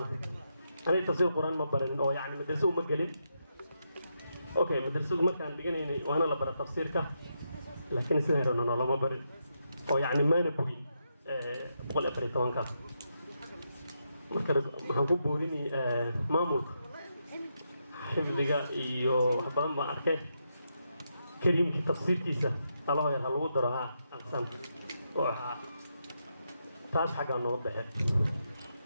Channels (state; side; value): inverted; both; correlation -0.82